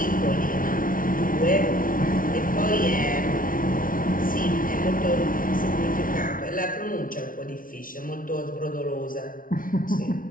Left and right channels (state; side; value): late; right; 0.40 ms